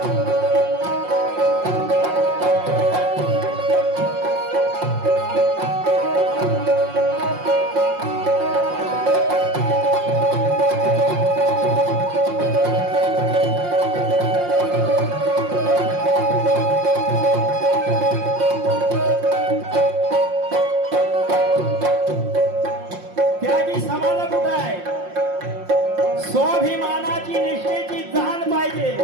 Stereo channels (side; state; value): left; late; 5.6 ms